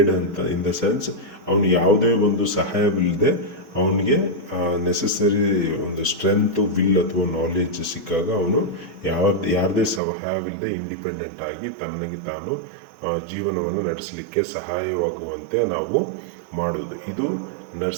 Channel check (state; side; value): drops out; left; at 10.0 s